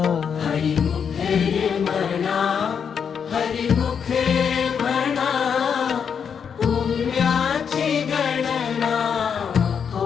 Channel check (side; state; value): right; quieter; 7.0 dB